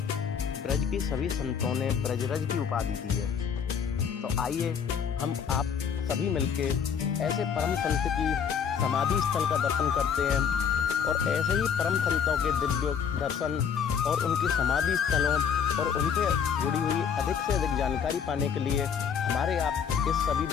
ब्रज की सभी संतों ने ब्रजरज की उपाधि दी है। तो आइए हम आप सभी मिलके ऐसे परम संत की समाधि स्थल का दर्शन करते हैं और ऐसे ही परम संतों के दिव्य दर्शन और उनकी समाधि स्थलों और उनसे जुड़ी हुई अधिक से अधिक जानकारी पाने के लिए हमारे आप इस सभी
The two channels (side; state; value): right; quieter; 7.2 dB